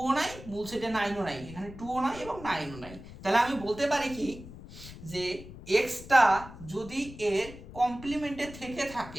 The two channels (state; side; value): noise; left; rumble, 15 dB below the sound